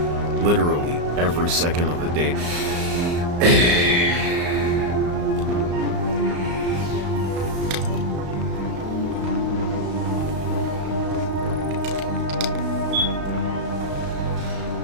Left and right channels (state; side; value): late; left; 35 ms